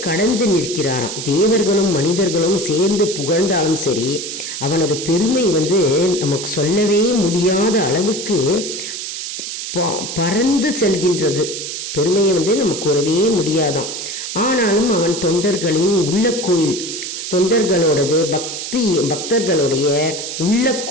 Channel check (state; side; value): noise; right; hiss, 6 dB below the sound